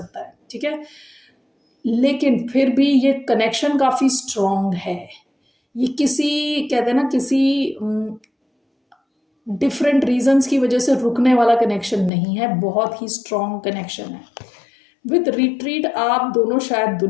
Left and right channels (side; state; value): right; drops out; at 12.1 s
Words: है, ठीक है, लेकिन फिर भी ये कनेक्शन काफ़ी स्ट्रॉन्ग है। ये किसी, कहते हैं ना, किसी डिफरेंट रीजंस की वजह से रुकने वाला कनेक्शन नहीं है, बहुत ही स्ट्रॉन्ग कनेक्शन है। विद रिट्रीट, आप दोनों शायद